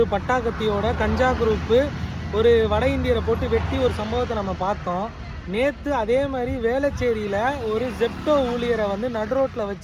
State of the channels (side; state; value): both; identical; correlation 1.00